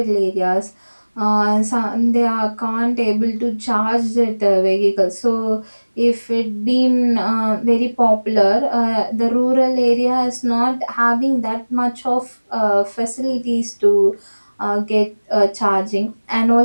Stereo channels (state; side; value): inverted; both; correlation -1.00